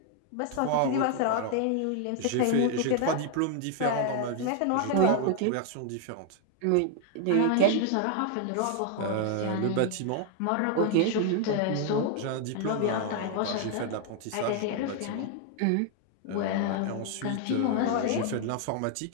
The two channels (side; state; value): both; different; correlation 0.00